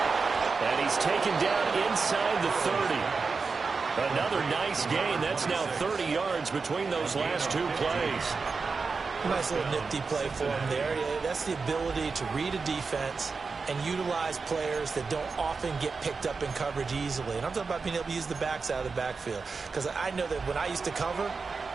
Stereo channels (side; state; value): left; quieter; 4.7 dB